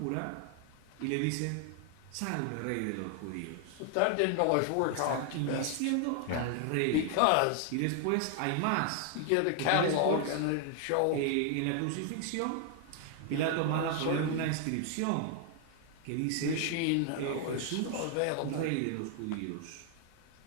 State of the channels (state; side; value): different; both; correlation 0.00